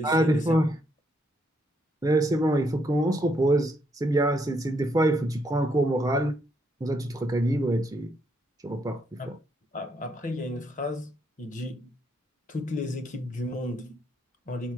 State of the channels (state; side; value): normal; both; correlation 0.75